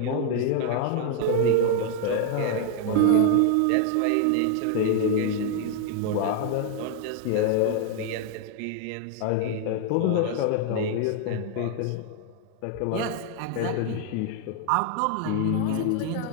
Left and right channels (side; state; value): both; different; correlation 0.00